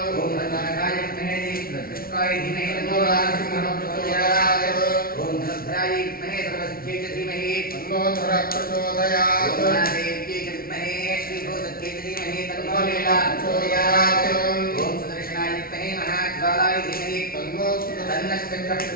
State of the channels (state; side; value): late; right; 0.43 ms